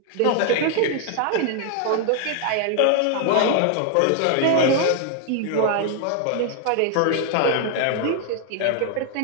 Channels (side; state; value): both; different; correlation 0.00